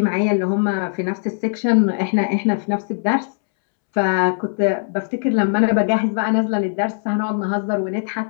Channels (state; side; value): silent; right; 66 dB below the other